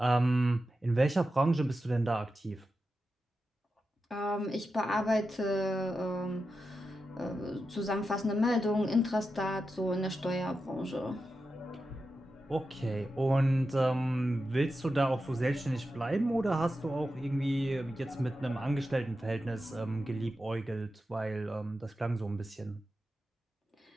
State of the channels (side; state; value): both; normal; correlation 0.90